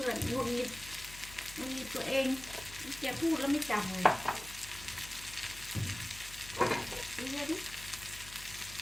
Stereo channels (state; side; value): noise; left; hum, 16 dB below the sound